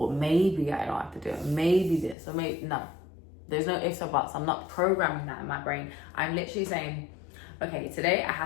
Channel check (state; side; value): drops out; right; at 2.1 s